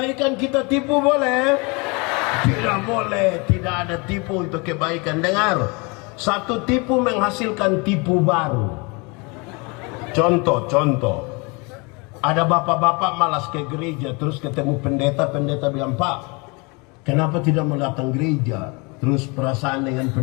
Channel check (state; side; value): quieter; right; 29.3 dB